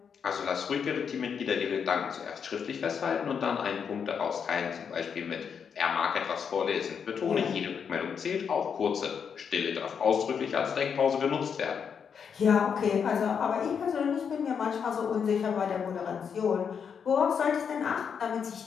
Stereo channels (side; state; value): right; quieter; 6.9 dB